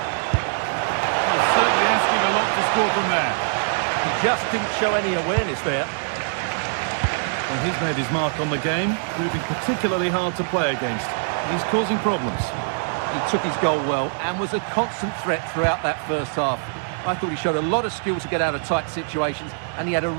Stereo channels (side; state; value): left; silent; digital silence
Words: Well, certainly asking a lot to score from there. He just didn't show any awareness there. Well, he's made his mark on the game, proving particularly hard to play against. He's causing problems. He took his goal well and was a constant threat throughout that first half. I thought he showed a lot of skill to get out of tight situations, and he had a